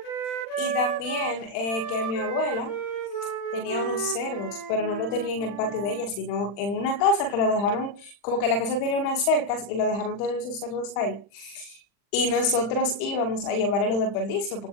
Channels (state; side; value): late; right; 40 ms